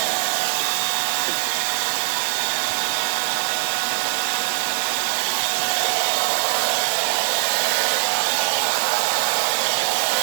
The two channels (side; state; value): left; silent; digital silence